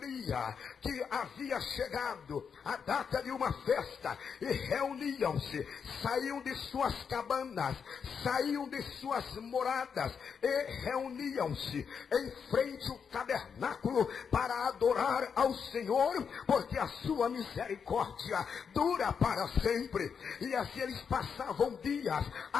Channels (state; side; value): quieter; right; 6.6 dB